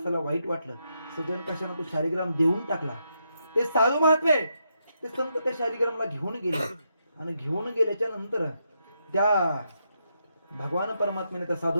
वाईट वाटलं. सजन कशाला तो शालिग्राम देऊन टाकला. ते साधू महात्मे ते संत त्या शालिग्रामला घेऊन गेले आणि घेऊन गेल्याच्या नंतर त्या भगवान परमात्म्याने त्या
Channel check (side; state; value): both; inverted; correlation -0.81